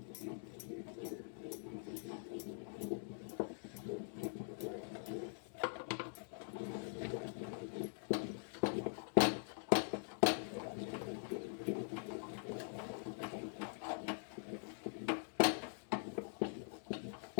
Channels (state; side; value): silent; right; digital silence